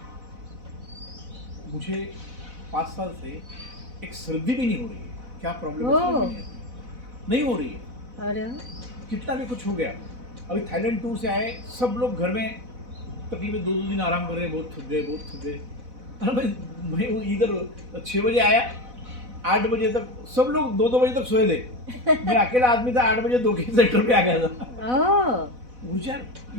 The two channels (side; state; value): left; late; 4.0 ms